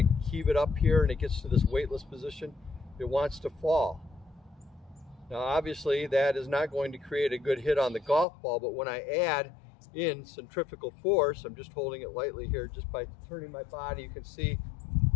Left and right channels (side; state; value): right; drops out; at 8.2 s